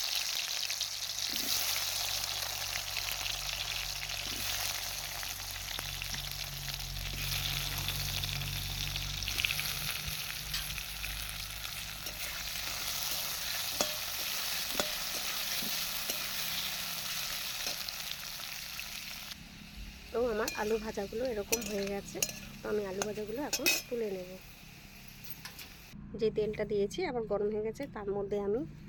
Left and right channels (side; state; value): both; identical; correlation 1.00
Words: তো আমার আলু ভাজাগুলো এরকম হয়ে গেছে, তো আমি আলু ভাজাগুলো এখন তুলে নেব। যে তেলটা দিয়েছি আবার গরম হয়ে গেছে, তার মধ্যে আমি